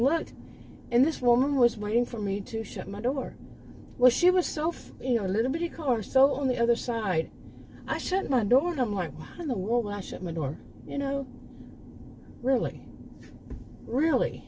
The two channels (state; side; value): identical; both; correlation 1.00